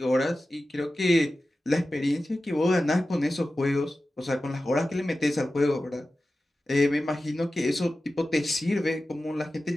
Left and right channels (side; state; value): both; normal; correlation 0.94